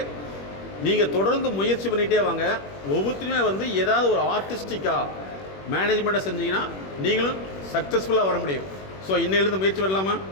நீங்கள் தொடர்ந்து முயற்சி பண்ணிகிட்டே வாங்க. ஒவ்வொருத்தருமே வந்து ஏதாவது ஒரு ஆர்டிஸ்டிக்காக மேனேஜ்மெண்ட்டை செஞ்சீங்கன்னா நீங்களும் சக்ஸஸ்ஃபுல்லாக வர முடியும். ஸோ இன்னையிலேருந்து முயற்சி பண்ணலாமா?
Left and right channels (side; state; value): right; late; 21 ms